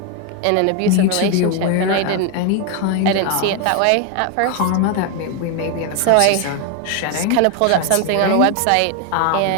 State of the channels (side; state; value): both; different; correlation 0.01